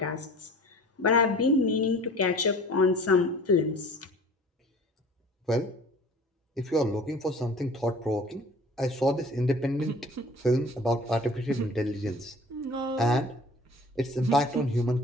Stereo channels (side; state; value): both; normal; correlation 0.46